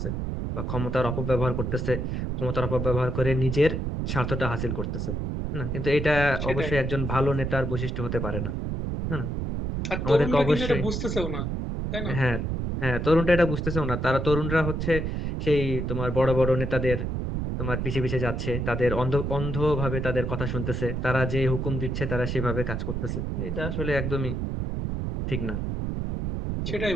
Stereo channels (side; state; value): right; noise; rumble, 2 dB below the sound